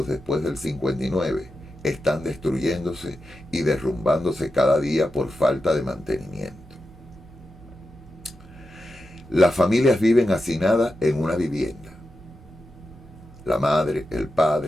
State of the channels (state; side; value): normal; both; correlation 0.90